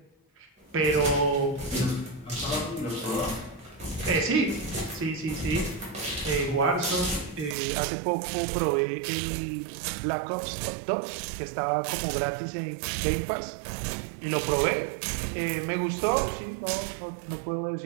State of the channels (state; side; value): drops out; left; at 7.6 s